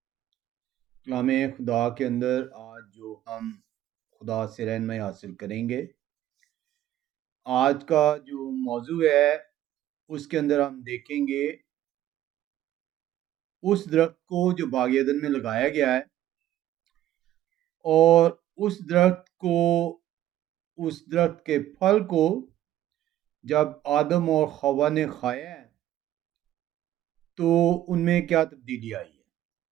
خدا کے اندر آج جو ہم خدا سے رہنمائی حاصل کریں گے، آج کا جو موضوع ہے اس کے اندر ہم دیکھیں گے اس درخت کو جو باغ عدن میں لگایا گیا ہے، اور اس درخت کے پھل کو جب آدم اور حوا نے کھایا ہے تو ان میں کیا تبدیلی آئی ہے۔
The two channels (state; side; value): quieter; left; 13.0 dB